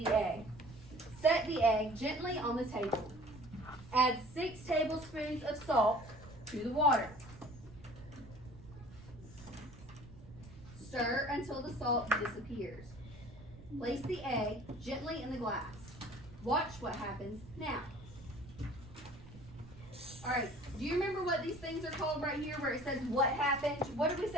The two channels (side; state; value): right; noise; rumble, 18 dB below the sound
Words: the egg. Set the egg gently on the table. Add 6 tablespoons of salt to the water. Stir until the salt disappears. Place the egg gently in the glass. Watch what happens now. All right, do you remember what these things are called right here where it says what happened? What did we